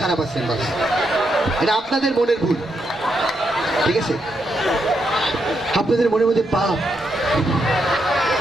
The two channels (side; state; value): both; normal; correlation 0.81